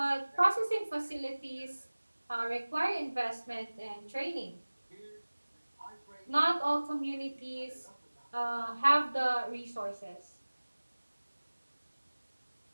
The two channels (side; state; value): both; inverted; correlation -1.00